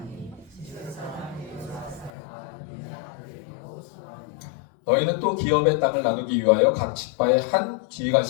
너희는 또 기업의 땅을 나누기 위하여 각 지파의 한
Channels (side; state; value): right; drops out; at 2.1 s